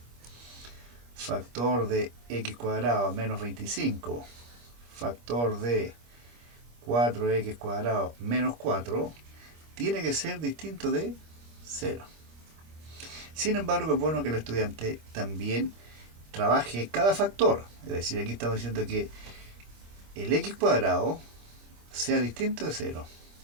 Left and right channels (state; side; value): late; left; 25 ms